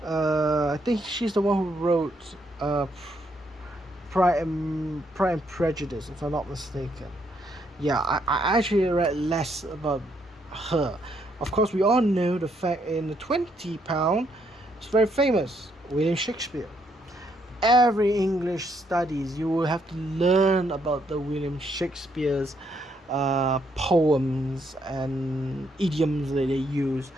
I think she's the one who wrote Pride and Prejudice, if I'm not mistaken. Yeah, I actually read less about her. Of course, we all know the fact in the £20, it's very famous, William Shakespeare. Every English studies, you will have to learn about the William Shakespeare's poems and idioms that they use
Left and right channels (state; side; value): normal; both; correlation 0.73